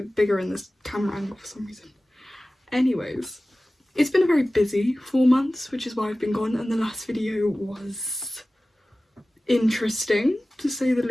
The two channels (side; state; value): both; normal; correlation 0.97